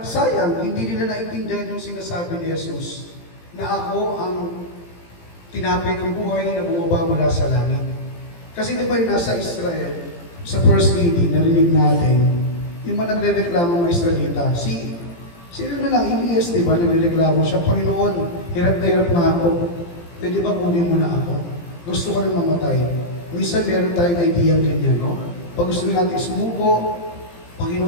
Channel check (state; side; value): late; right; 17 ms